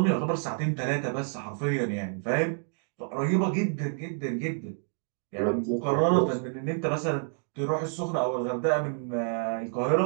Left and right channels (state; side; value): silent; left; 59 dB below the other